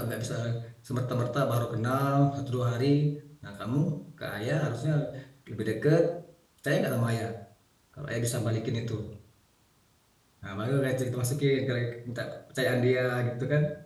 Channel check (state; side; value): identical; both; correlation 1.00